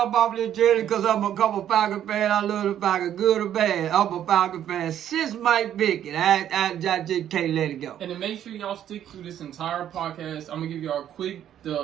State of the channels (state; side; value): quieter; left; 10.6 dB